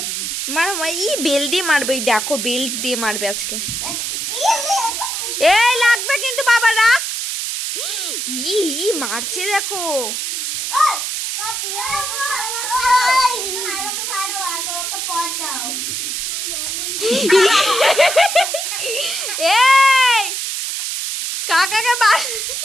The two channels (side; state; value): right; noise; hiss, 3 dB below the sound